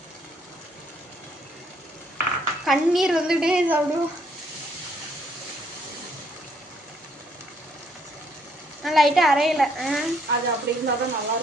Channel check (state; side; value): normal; both; correlation 0.69